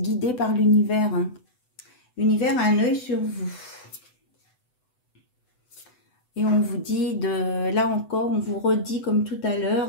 guidé par l'univers. Hein. L'univers a un œil sur vous. Et on vous dit, là encore, on vous redit comme tout à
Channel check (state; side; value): late; right; 8.0 ms